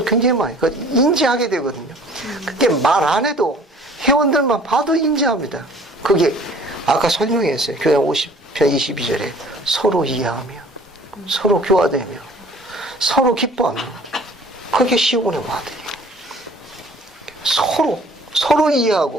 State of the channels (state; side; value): normal; both; correlation 0.52